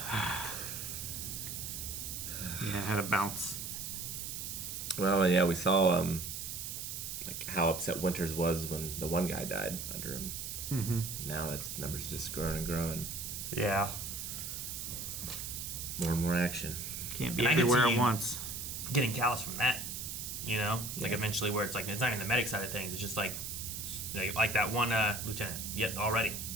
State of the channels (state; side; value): noise; right; hiss, 6 dB below the sound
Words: Yeah, it had a bounce. Well, yeah, we saw like how upset Winters was when the one guy died under him. Mm-hmm. Now that number's just growing and growing. Yeah. More and more action. Can't be And I could everywhere see at once. Getting callous from that, like eventually where it's like it's not even the medic side of things. It's just like that one lieutenant yet already,